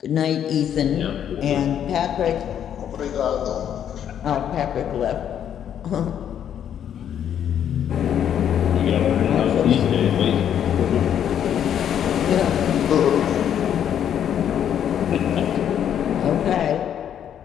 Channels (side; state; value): right; quieter; 9.5 dB